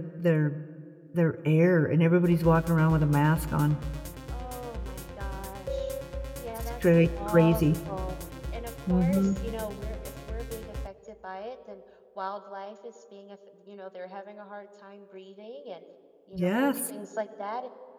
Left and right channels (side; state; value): both; identical; correlation 1.00